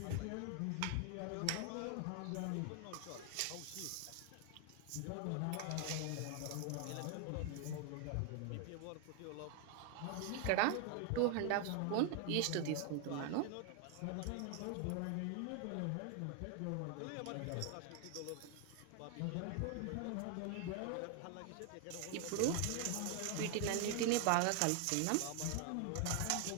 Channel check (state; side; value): different; both; correlation 0.00